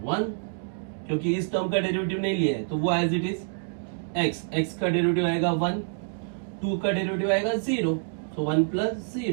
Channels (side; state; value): left; silent; digital silence